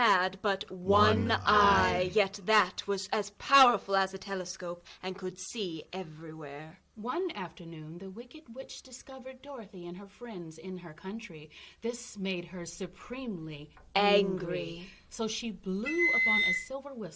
but one eye, yet that was as powerful as a telescope and could see everywhere. One afternoon, the Wicked Witch discovered Dorothy and her friends in her country. This made her supremely angry. So she blew upon a silver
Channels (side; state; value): both; identical; correlation 1.00